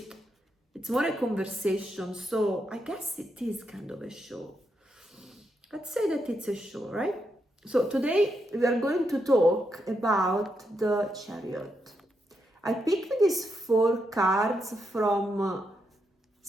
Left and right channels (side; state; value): both; normal; correlation 0.82